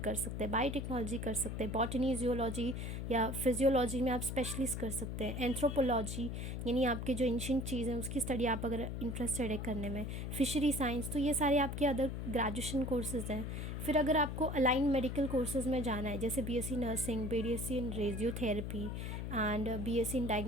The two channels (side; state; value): left; noise; hum, 4 dB below the sound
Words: सकते हैं, बायोटेक्नोलॉजी कर सकते हैं, बॉटनी, जियोलॉजी या फिजियोलॉजी में आप स्पेशलिस्ट कर सकते हैं, एंथ्रोपोलॉजी यानी आपके जो एंशिएंट चीज़ हैं उसकी स्टडी आप अगर इंटरेस्टेड है करने में, फिशरी साइंस। तो ये सारे आपके अदर ग्रेजुएशन कोर्सेज हैं। फिर अगर आपको अलाइन मेडिकल कोर्सेज में जाना है, जैसे BSc nursing, BSc in radiotherapy and BSc in